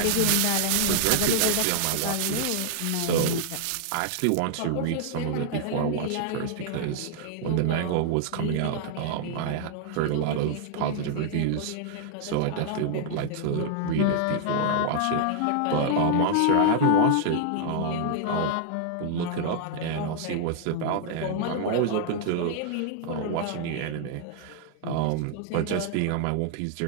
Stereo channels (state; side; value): different; both; correlation -0.01